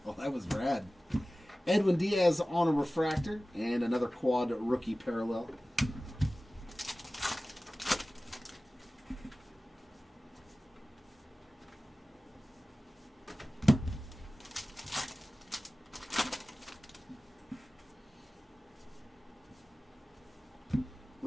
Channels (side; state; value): both; normal; correlation 0.97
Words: Oh, that was rad. Edwin Diaz on a refractor. And another quad rookie parallel.